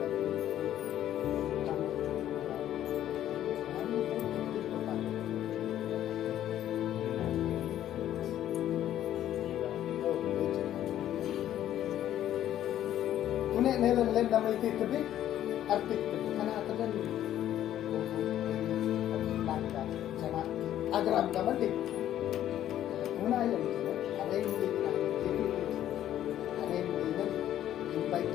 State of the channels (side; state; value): right; quieter; 11.8 dB